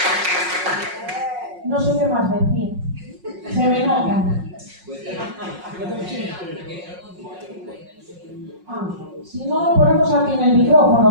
No sé qué más decir. Se me nota. Si no, lo ponemos aquí en el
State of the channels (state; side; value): late; left; 5.5 ms